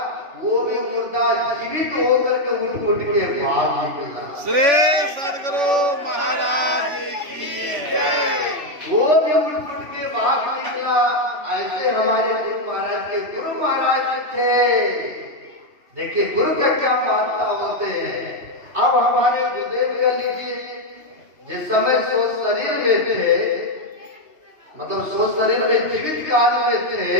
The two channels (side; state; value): left; late; 3.5 ms